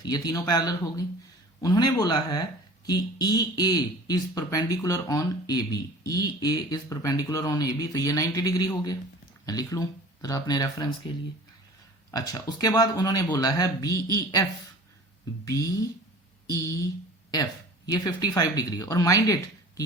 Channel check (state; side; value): normal; both; correlation 0.43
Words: ये तीनों पैरेलल हो गई। उन्होंने बोला है कि EA is perpendicular on AB। EA is perpendicular on AB, तो ये 90 डिग्री हो गया। मैं लिख लूं जरा अपने रेफरेंस के लिए। अच्छा, उसके बाद उन्होंने बोला है BEF ये 55 डिग्री, और माइंड इट कि